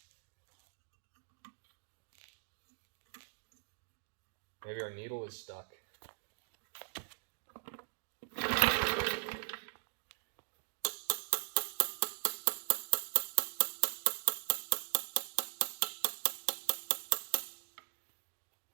Maybe our needle is stuck.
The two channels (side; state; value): left; silent; digital silence